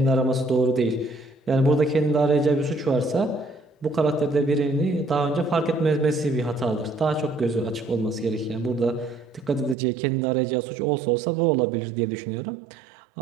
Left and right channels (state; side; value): drops out; left; at 9.8 s